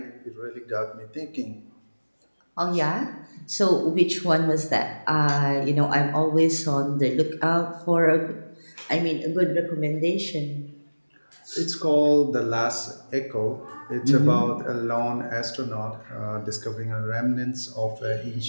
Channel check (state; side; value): inverted; both; correlation -1.00